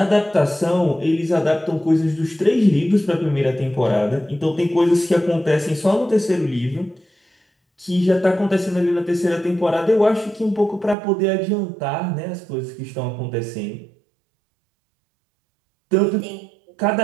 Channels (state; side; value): drops out; left; at 11.0 s